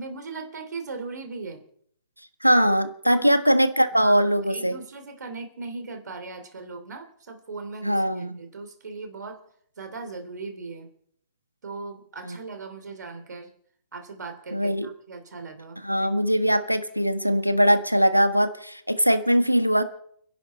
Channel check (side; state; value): both; inverted; correlation -0.94